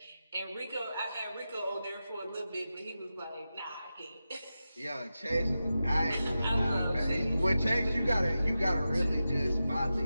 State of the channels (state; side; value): inverted; both; correlation -0.92